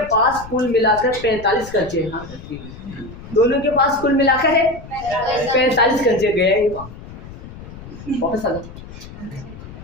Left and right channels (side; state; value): left; noise; rumble, 15 dB below the sound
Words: पास कुल मिलाकर 45 कंचे। हाँ दोनों के पास कुल मिलाकर है 45 कंचे। गए वापस आ जाओ।